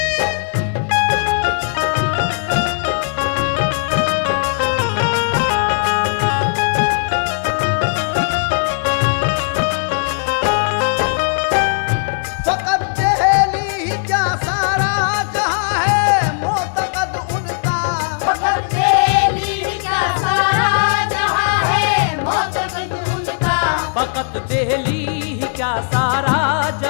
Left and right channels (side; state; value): right; silent; digital silence